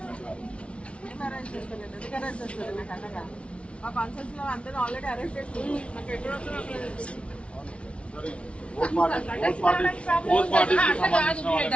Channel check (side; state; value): right; late; 0.060 ms